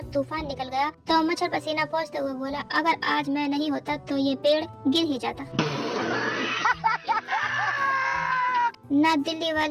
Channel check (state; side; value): identical; both; correlation 1.00